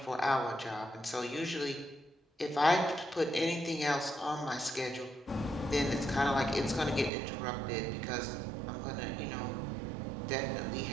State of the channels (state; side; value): drops out; left; at 7.1 s